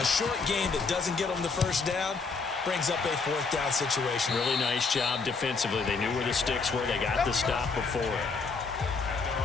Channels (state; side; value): quieter; right; 4.6 dB